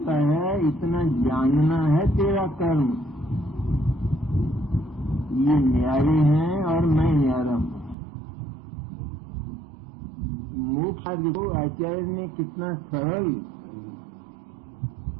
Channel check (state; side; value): drops out; left; at 8.0 s